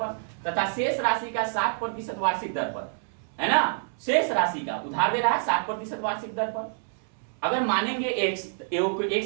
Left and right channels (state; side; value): silent; left; 60 dB below the other